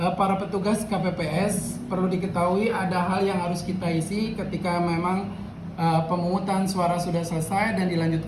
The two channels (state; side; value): identical; both; correlation 1.00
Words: para petugas KPPS, perlu diketahui ada hal yang harus kita isi ketika memang pemungutan suara sudah selesai dan